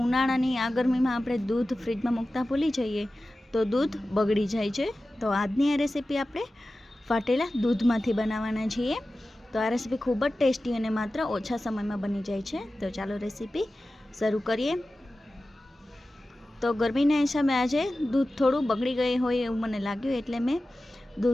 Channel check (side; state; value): both; normal; correlation 0.95